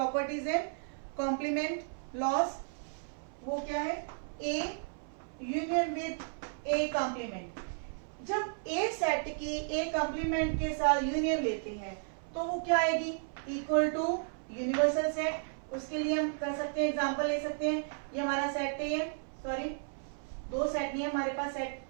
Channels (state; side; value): silent; left; 55 dB below the other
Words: है कॉम्प्लीमेंट लॉस, वो क्या है, A union with A complement. जब ए सेट की ए कंप्लीमेंट के साथ यूनियन लेते हैं तो वो क्या आएगी, इक्वल टू यूनिवर्सल सेट। उसके लिए हम कर सकते हैं, एग्जांपल ले सकते हैं। ये हमारा सेट ए है, सॉरी दो सेट नहीं है हमारे पास,